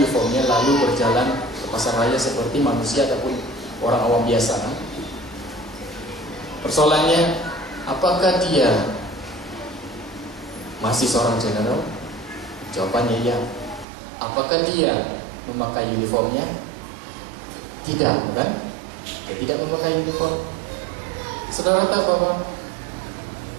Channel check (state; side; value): drops out; left; at 13.9 s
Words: lalu berjalan ke pasar raya seperti manusia ataupun orang awam biasa. Persoalannya, apakah dia masih seorang jenderal? Jawabannya ya. Apakah dia memakai uniformnya? Tidak, bukan? Dia tidak memakai uniform. Saudara tahu bahwa